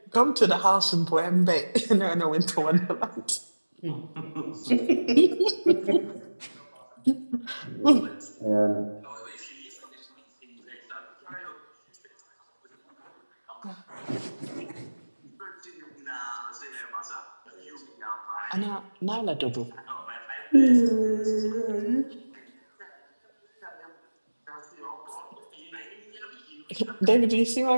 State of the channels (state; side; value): inverted; both; correlation -1.00